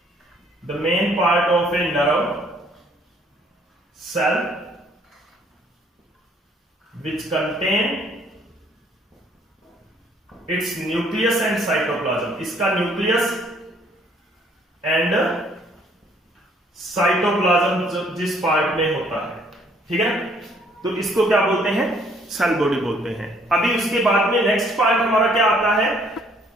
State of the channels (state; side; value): normal; both; correlation 0.63